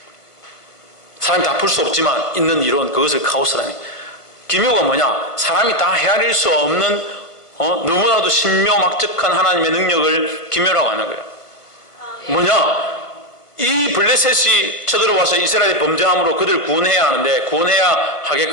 사람이 다 풀 수 없지만 있는 이론, 그것을 카오스라니. 기묘가 뭐냐? 사람이 다 헤아릴 수 없는 너무나도 신묘막측한 하나님의 능력을 기묘라고 하는 거예요. 뭐냐? 이 블레셋이 쳐들어와서 이스라엘의 범죄함으로 그들을 구원해야 하는데, 구원해야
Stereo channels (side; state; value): right; late; 1.4 ms